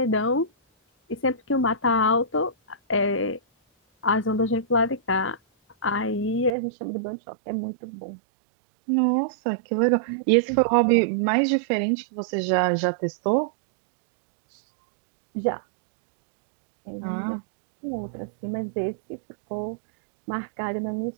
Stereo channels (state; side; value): drops out; left; at 6.6 s